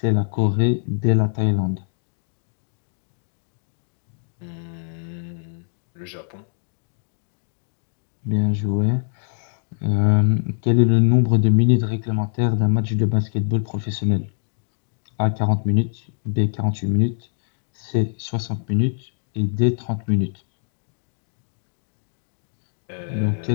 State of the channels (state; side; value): silent; right; digital silence